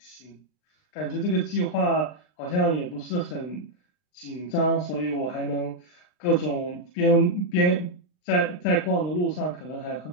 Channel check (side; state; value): right; late; 39 ms